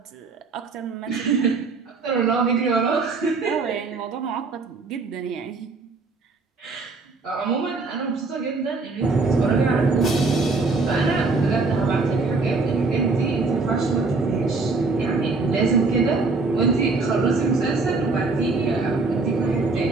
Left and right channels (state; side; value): quieter; left; 3.9 dB